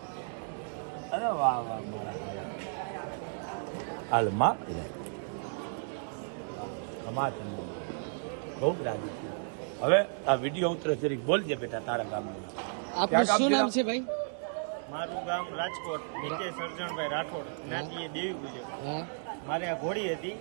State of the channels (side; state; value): left; silent; digital silence